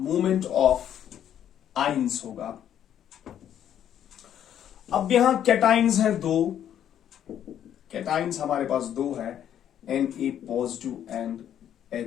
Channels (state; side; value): quieter; right; 10.1 dB